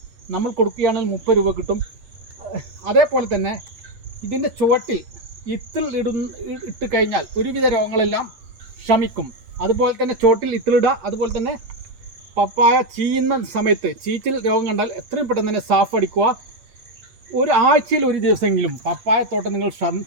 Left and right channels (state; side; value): late; left; 8.8 ms